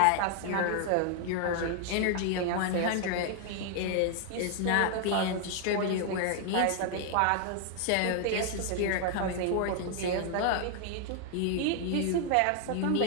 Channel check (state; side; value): different; both; correlation 0.00